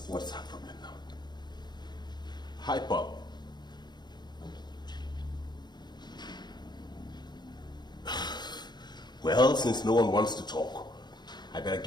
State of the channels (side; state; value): right; late; 0.21 ms